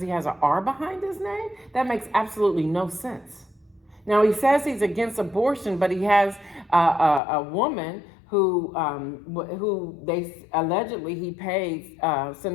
he has an R behind his name? That makes absolutely no sense. Now, he says he's against abortion, but he has a woman who they allegedly he paid,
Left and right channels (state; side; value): drops out; right; at 7.2 s